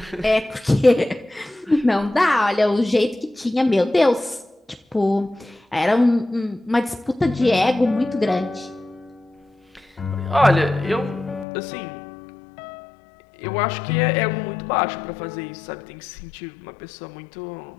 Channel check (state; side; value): drops out; right; at 11.5 s